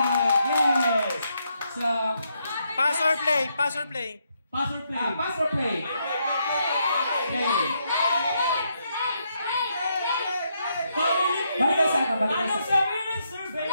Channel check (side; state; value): both; inverted; correlation -0.78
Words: Yes! So, Pass or play? Pass or play? Pass or play? pass or play? Okay. Family Feud! Balik sa ano? Balik Anong sa sabihin ng survey?